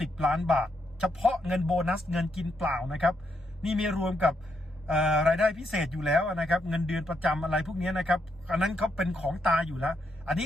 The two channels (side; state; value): both; normal; correlation 0.78